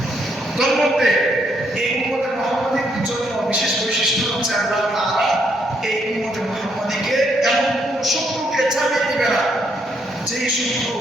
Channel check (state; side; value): normal; both; correlation 0.74